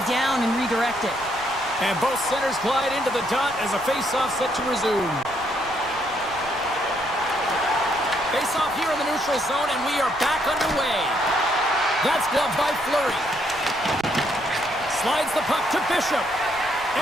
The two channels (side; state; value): right; noise; rumble, 21 dB below the sound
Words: down and redirect it. And both centers glide into the dot as a face-off set to resume. Face-off here in the neutral zone, and we are back underway. That's gloved by Fleury. Slides the puck to Bishop.